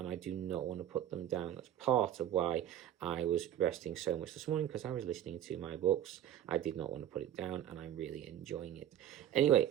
I do not want to put them down. That's part of why I was resting so much this morning because I was listening to my books. I did not want to put it down, and I'm really enjoying it. Anyway,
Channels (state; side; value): quieter; left; 11.1 dB